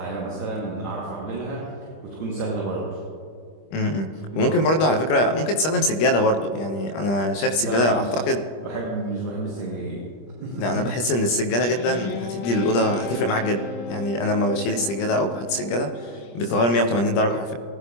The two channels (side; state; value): right; late; 25 ms